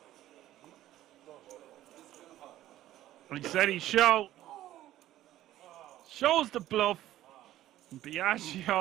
He said he shows the bluff.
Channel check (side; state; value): left; quieter; 13.8 dB